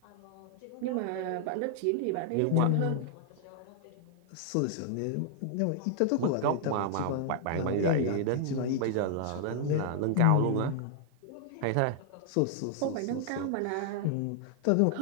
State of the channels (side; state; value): both; different; correlation 0.00